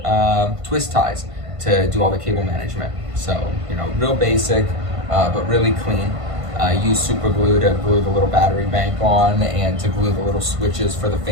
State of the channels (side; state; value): left; late; 1.5 ms